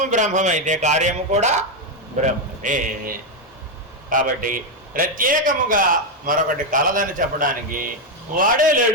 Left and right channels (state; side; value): normal; both; correlation 0.04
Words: బ్రహ్మమైతే కార్యము కూడా బ్రహ్మమే. కాబట్టి ప్రత్యేకముగా మరొకటి కలదని చెప్పడానికి వాడే